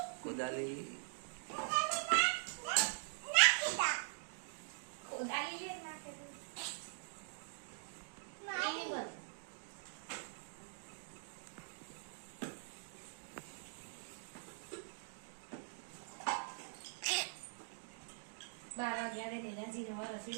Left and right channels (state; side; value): silent; left; digital silence